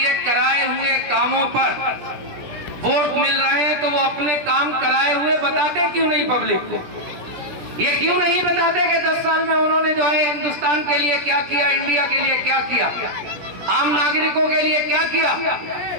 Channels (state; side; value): late; left; 17 ms